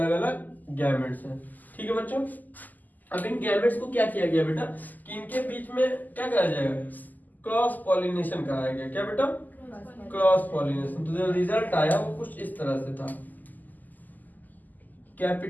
अलग गैमेट्स हैं, ठीक है बच्चों। अब इन गैमेट्स को क्या किया गया बेटा, कि इनके बीच में क्या कराया जाएगा, क्रॉस पॉलिनेशन कराया गया। क्या बेटा, क्रॉस पॉलिनेशन। तो जो रिजल्ट आया वो कुछ इस तरह से था,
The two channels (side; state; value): right; late; 0.083 ms